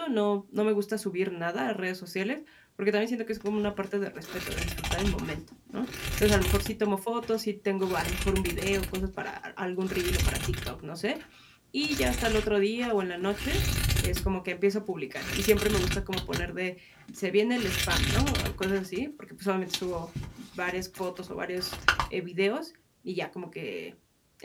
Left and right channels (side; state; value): both; identical; correlation 1.00